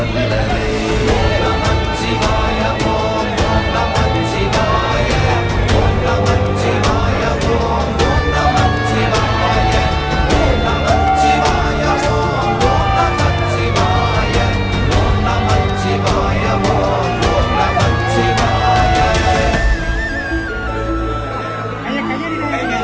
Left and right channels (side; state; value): both; identical; correlation 1.00